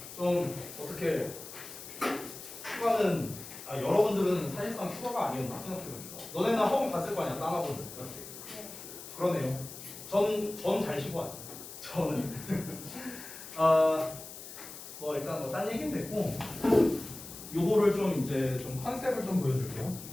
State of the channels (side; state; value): left; noise; hiss, 13 dB below the sound